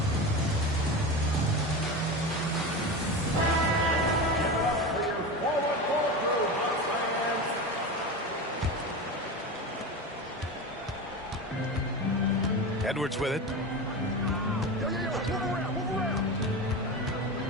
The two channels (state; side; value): normal; both; correlation 0.24